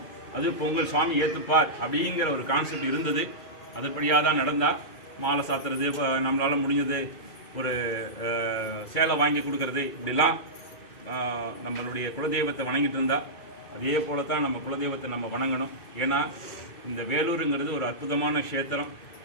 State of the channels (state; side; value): late; right; 2.3 ms